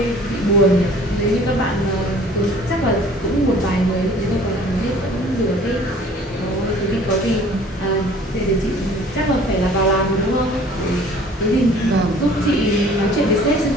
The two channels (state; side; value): normal; both; correlation 0.51